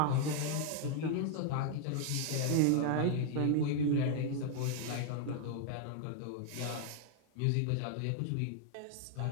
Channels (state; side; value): different; both; correlation 0.00